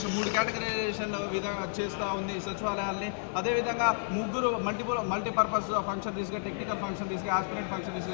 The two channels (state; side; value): silent; right; 57 dB below the other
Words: 3 కేటగరైజేషన్ చేస్తూ ఉంది ఈ సచివాలయాల్ని. అదేవిధంగా ముగ్గురు మల్టీపర్పస్ ఫంక్షనరీస్గా, టెక్నికల్ ఫంక్షనరీస్గా, ఆస్పిరెంట్